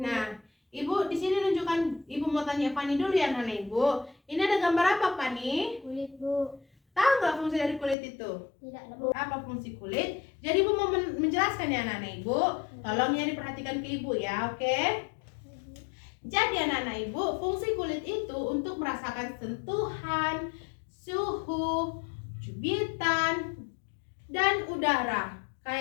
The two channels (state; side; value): drops out; right; at 8.0 s